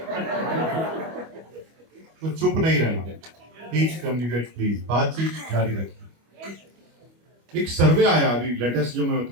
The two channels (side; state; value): left; late; 25 ms